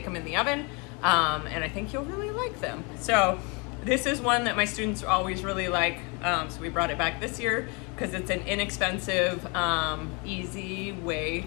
them in the oven, and I think you'll really like them. So this is one that my students always really like, so we brought it back this year because it's an inexpensive, easy way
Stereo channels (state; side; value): quieter; right; 31.5 dB